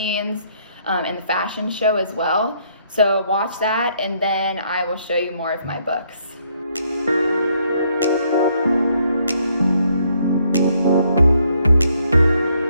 and the fashion show as well. So watch that, and then I will show you more of my books.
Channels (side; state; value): both; inverted; correlation -0.70